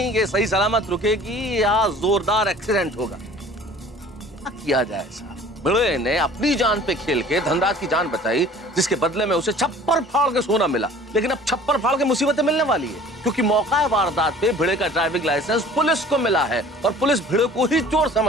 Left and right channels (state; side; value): normal; both; correlation 0.48